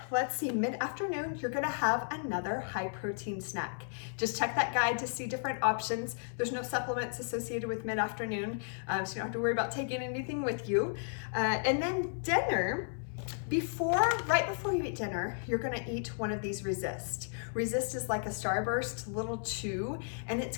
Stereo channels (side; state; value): right; silent; 55 dB below the other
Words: let's see, mid-afternoon, you're gonna have another high protein snack. Just check that guide to see different options. There's no supplements associated with mid-afternoon, so you don't have to worry about taking anything with you. And then dinner, right before you eat dinner, you're gonna eat one of these Resist. Resist is like a Starburst little chew, and it's